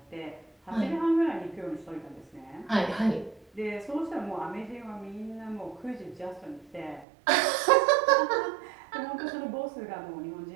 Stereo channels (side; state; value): left; drops out; at 7.1 s